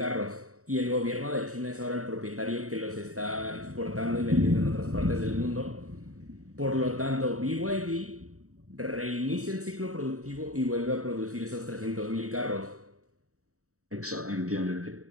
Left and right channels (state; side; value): late; left; 0.65 ms